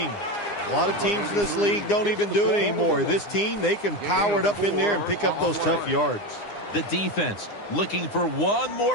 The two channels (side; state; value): right; late; 9.8 ms